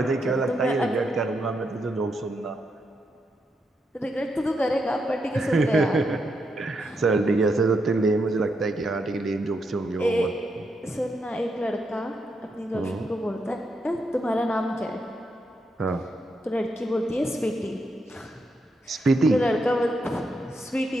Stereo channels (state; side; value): normal; both; correlation 0.81